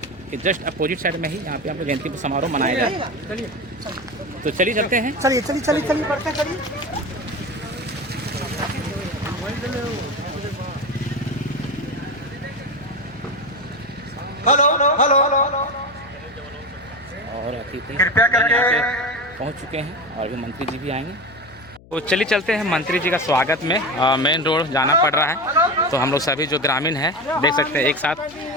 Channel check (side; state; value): left; noise; hum, 23 dB below the sound